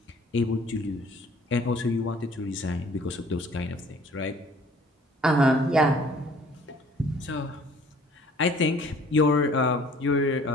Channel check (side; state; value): both; normal; correlation 0.54